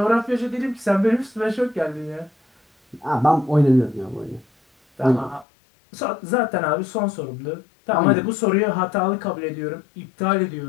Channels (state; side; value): drops out; right; at 5.5 s